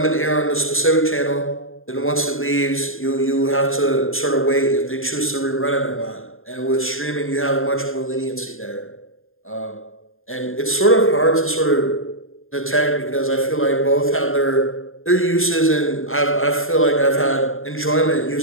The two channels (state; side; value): late; right; 0.60 ms